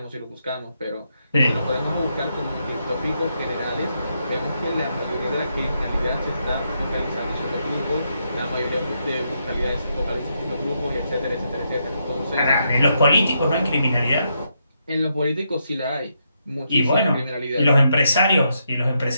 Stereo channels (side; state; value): both; inverted; correlation -0.80